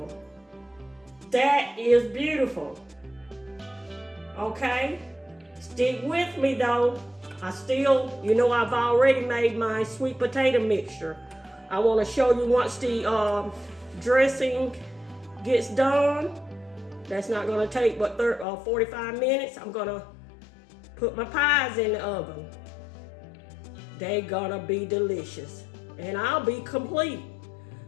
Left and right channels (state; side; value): drops out; right; at 18.4 s